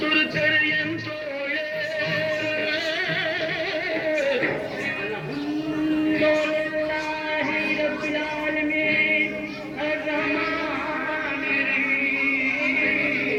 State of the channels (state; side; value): identical; both; correlation 1.00